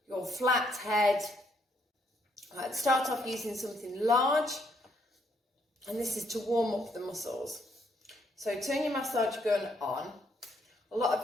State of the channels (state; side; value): normal; both; correlation 0.72